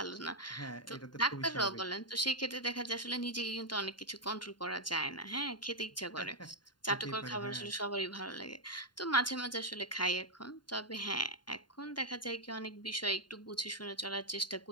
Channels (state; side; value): late; right; 0.71 ms